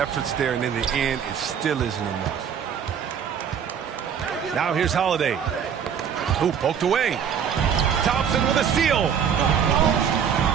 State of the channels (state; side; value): quieter; left; 7.8 dB